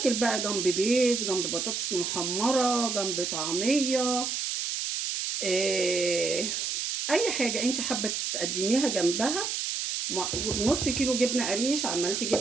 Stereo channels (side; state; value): right; noise; hiss, 2 dB below the sound